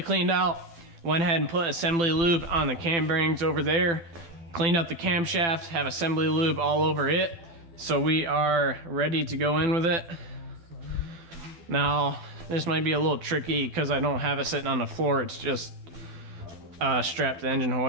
cleaned out. Went ahead and put assembly lube on the cam bearings over there. Cleaned up the camshaft, have assembly lube all over it. So we are ready to go in with it. Now, this might be a little tricky because I don't have it sitting on the floor. It's just strapped to the engine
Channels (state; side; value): late; left; 12 ms